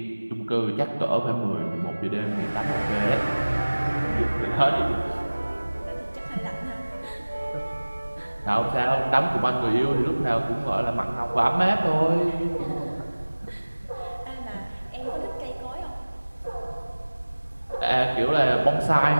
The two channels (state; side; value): inverted; both; correlation -1.00